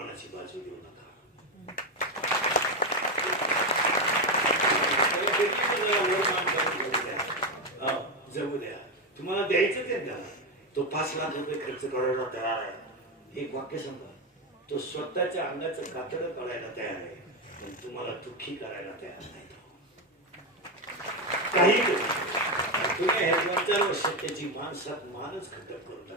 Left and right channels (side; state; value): both; normal; correlation 0.10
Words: बाजू देऊ नका. जगू द्या, तुम्हाला द्यायचं ते द्या. तो 5 लाख रुपये खर्च करायला तयार आहे. एक वाक्य सांगा, तो स्वतःच्या अंगाचं कातडं काढायला तयार आहे, पण तुम्हाला दुःखी करायला तयार नाही. काही तुम्ही हे 2-4 वर्षात त्याची माणसात मानच खटक करून